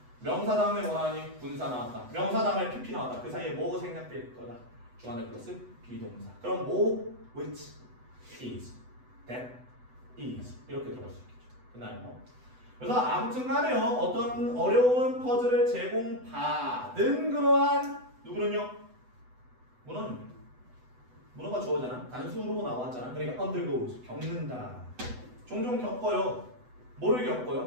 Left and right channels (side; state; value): left; late; 8.0 ms